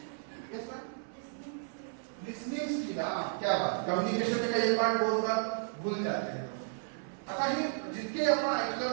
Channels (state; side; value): silent; left; 56 dB below the other